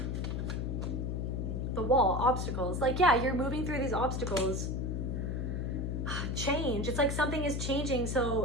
The wall, obstacles. Like, yeah, you're moving through these obstacles. Change. It's like something is changing,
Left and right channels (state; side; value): noise; left; hum, 1 dB below the sound